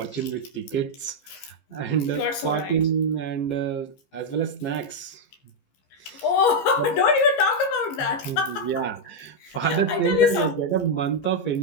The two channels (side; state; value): right; late; 15 ms